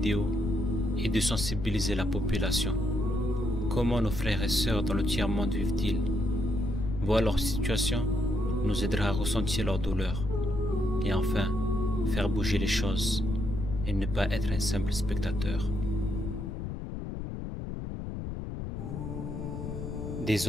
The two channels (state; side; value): noise; left; rumble, 6 dB below the sound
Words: est de sensibiliser la population. Comment nos frères et sœurs dans le tiers-monde vivent-ils? Voir leur situation nous aidera à ressentir leur douleur et enfin faire bouger les choses et ne pas être un simple spectateur. Des